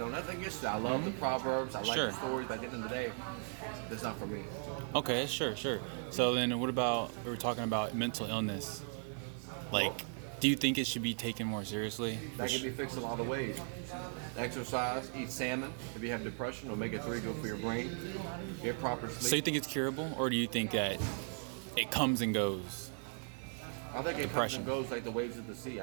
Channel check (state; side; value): silent; left; 53 dB below the other